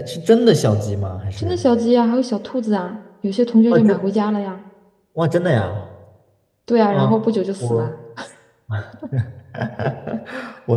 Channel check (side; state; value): both; identical; correlation 1.00